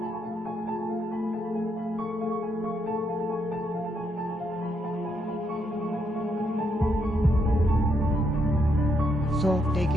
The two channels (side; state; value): both; normal; correlation 0.77